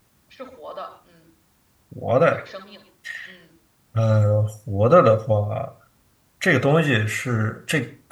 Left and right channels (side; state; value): both; identical; correlation 1.00